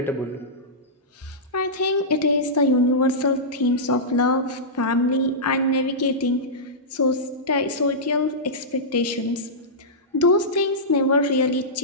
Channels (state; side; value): normal; both; correlation -0.14